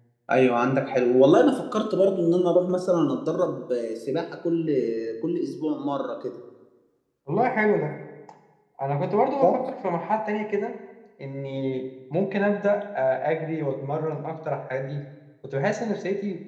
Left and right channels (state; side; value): identical; both; correlation 1.00